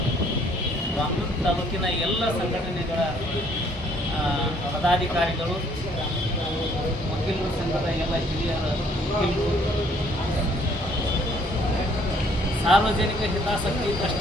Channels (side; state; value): both; normal; correlation 0.63